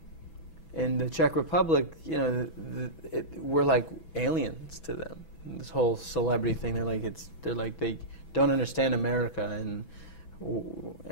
in the Czech Republic, you know, we're like aliens to them. This whole celebrity thing, they're like they don't understand America,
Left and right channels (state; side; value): late; right; 6.1 ms